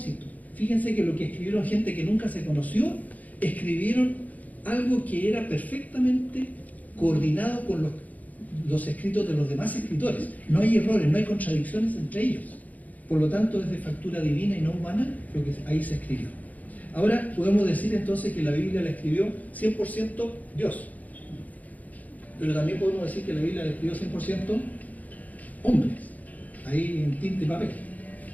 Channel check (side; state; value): right; late; 0.077 ms